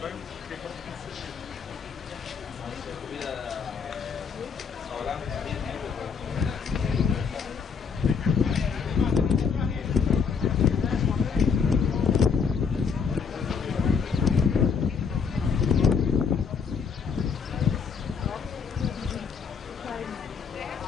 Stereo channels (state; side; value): quieter; right; 5.9 dB